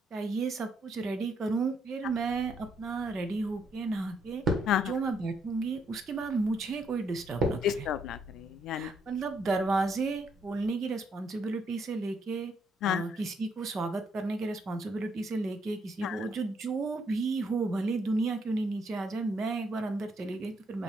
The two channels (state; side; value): normal; both; correlation 0.73